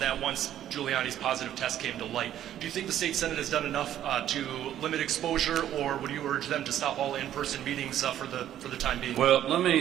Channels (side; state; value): left; quieter; 11.5 dB